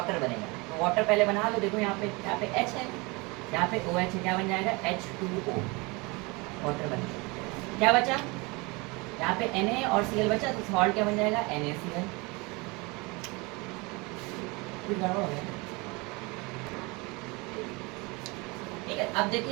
बनेगा, तो वाटर पहले बना लो। देखो यहाँ पे H है, यहाँ पे OH है, क्या बन जाएगा, H2O, वाटर बन जाएगा। क्या बचा, यहाँ पे Na और Cl बचा, तो सॉल्ट क्या बन जाएगा, NaCl। कुछ गड़बड़ हो गया, ठीक है। अब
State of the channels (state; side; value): quieter; left; 26.6 dB